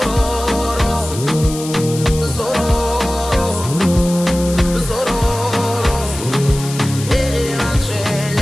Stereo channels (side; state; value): left; noise; hiss, 11 dB below the sound